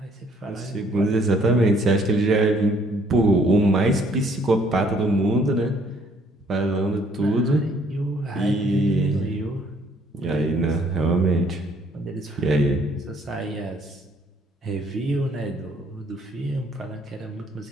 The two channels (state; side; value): normal; both; correlation 0.63